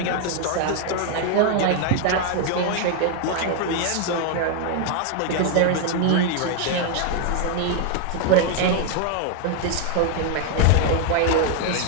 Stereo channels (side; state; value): both; different; correlation 0.00